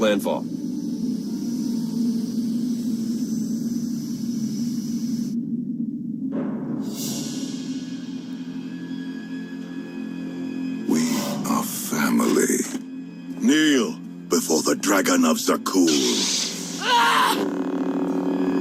Kneel before the Dragon of Zakuul.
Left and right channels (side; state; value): both; identical; correlation 1.00